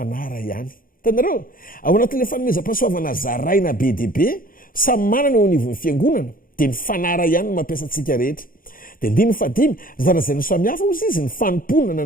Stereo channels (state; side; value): late; right; 0.41 ms